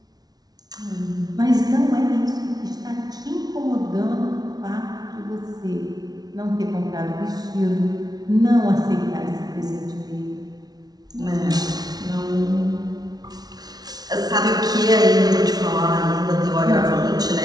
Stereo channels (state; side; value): late; left; 0.19 ms